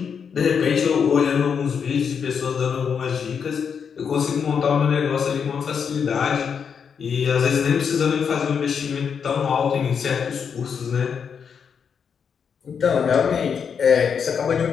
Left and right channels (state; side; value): quieter; right; 6.8 dB